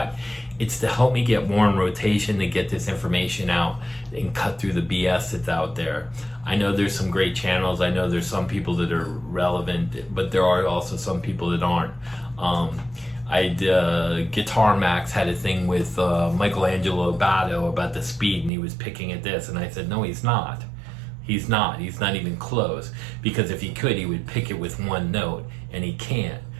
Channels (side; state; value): left; drops out; at 18.5 s